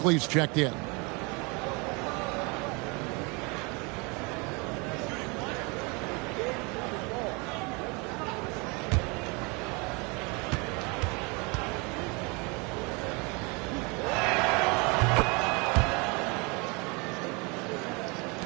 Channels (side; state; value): left; quieter; 29.2 dB